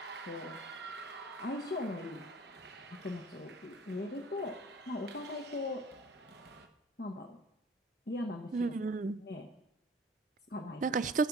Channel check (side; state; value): both; normal; correlation 0.48